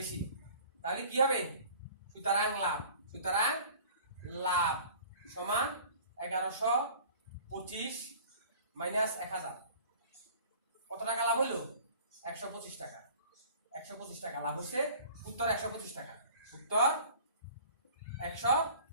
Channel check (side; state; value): both; inverted; correlation -0.46